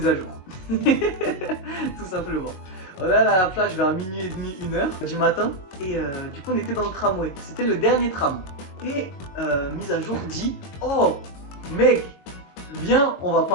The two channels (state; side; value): late; right; 22 ms